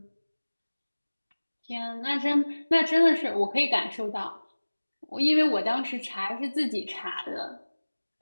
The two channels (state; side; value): inverted; both; correlation -1.00